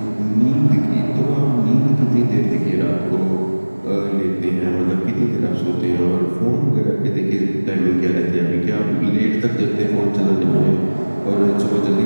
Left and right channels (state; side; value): inverted; both; correlation -1.00